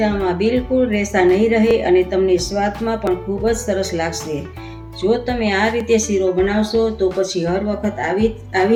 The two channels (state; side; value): identical; both; correlation 1.00